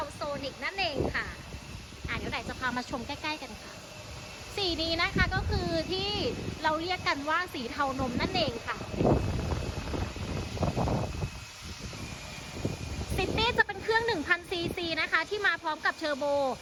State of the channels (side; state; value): both; identical; correlation 1.00